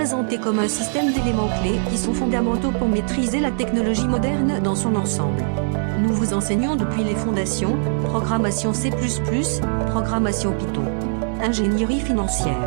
comme un système d'éléments clés qui sont fondamentaux pour maîtriser la technologie moderne dans son ensemble. Nous vous enseignons depuis les fondations, programmation C++, programmation Python, ingénierie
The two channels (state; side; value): silent; left; digital silence